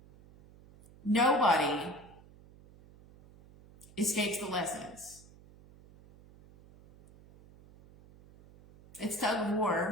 Nobody escapes the lessons. It's tug of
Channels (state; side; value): noise; right; hum, 24 dB below the sound